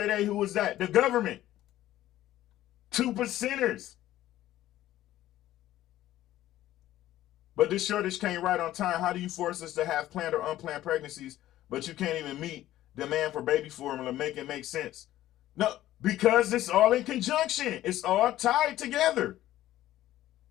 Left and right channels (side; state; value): right; quieter; 14.1 dB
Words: they, who was that? The government. 2%ers. But this shortage came right on time. How do you force us to have planned or unplanned pregnancies, but you can't even meet demand for baby formula, make it make sense? No, because it's all in conjunction. It's all tied together.